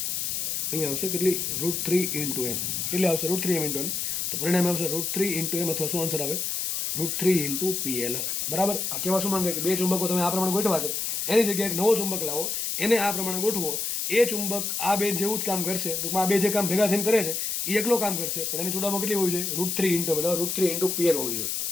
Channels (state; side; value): noise; left; hiss, 1 dB below the sound